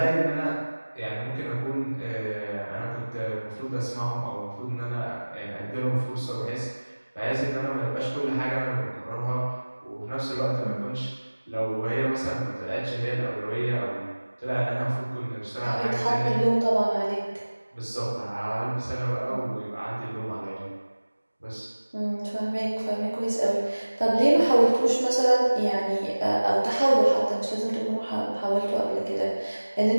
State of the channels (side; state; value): both; inverted; correlation -1.00